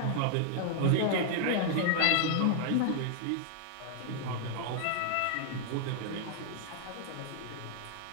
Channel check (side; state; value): both; different; correlation -0.01